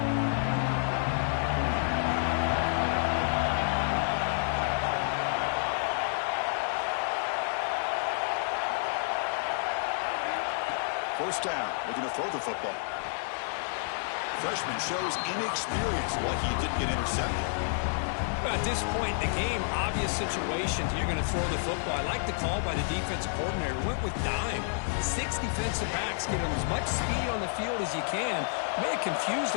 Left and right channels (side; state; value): right; silent; digital silence